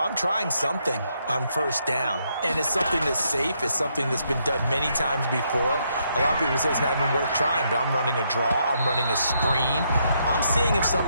trying something on 1st down, and it's something that's safe. It's something that's been done many times before. A lot of people say it's not even worth trying, but I'm running a draw. I'm running a screen. I'm seeing if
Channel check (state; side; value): inverted; both; correlation -0.76